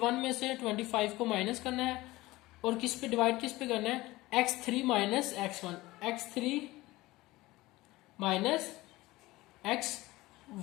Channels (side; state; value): right; quieter; 19.1 dB